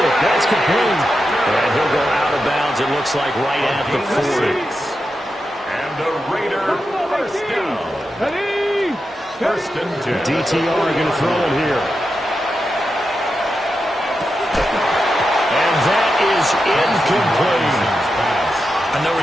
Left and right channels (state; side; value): normal; both; correlation 0.88